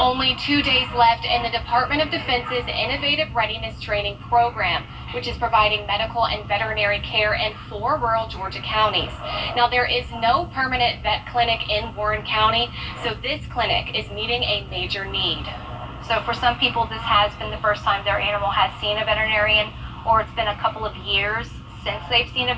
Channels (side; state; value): both; identical; correlation 1.00